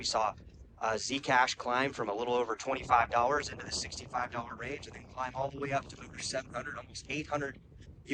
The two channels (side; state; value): both; identical; correlation 1.00